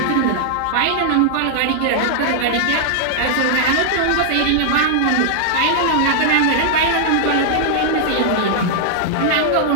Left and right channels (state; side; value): different; both; correlation -0.01